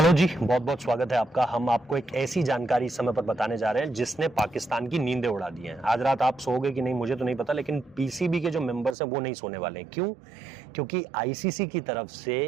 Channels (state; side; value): drops out; left; at 9.0 s